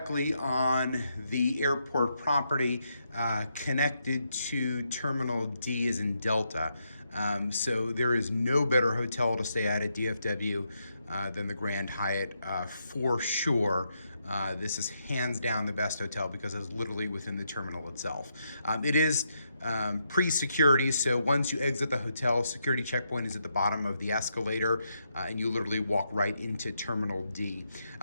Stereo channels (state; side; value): inverted; both; correlation -0.80